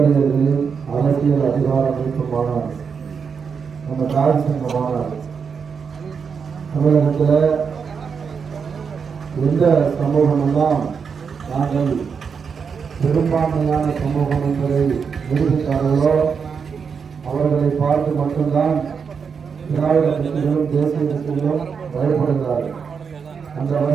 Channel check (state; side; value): quieter; left; 6.1 dB